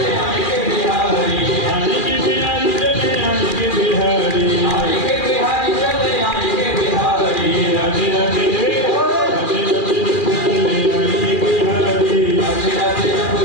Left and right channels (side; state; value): right; late; 2.4 ms